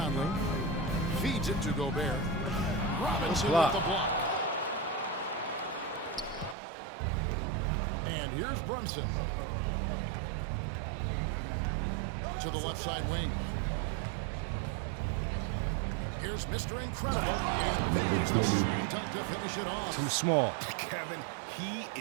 Feeds it to Gobert. Robinson with the block. And here's Brunson. To the left side wing. Here's Mr. Incredible. And there's the slam dunk to finish it off. Too small. Kevin, he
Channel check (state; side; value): drops out; left; at 6.6 s